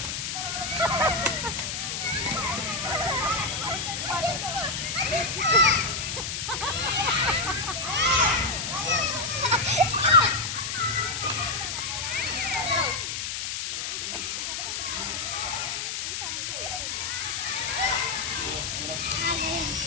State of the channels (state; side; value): noise; left; hiss, 3 dB below the sound